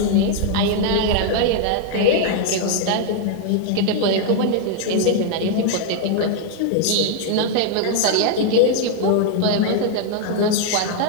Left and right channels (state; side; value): different; both; correlation 0.00